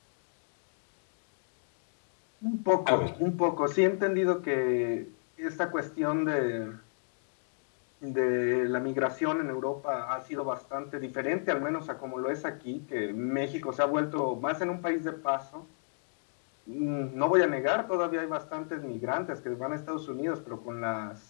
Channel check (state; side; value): silent; right; digital silence